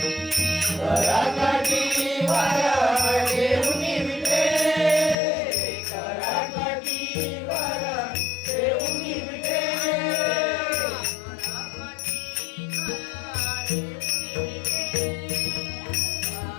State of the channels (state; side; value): drops out; right; at 5.2 s